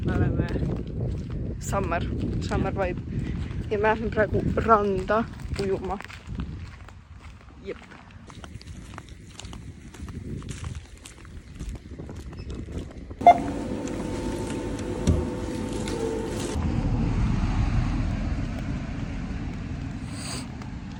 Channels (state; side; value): identical; both; correlation 1.00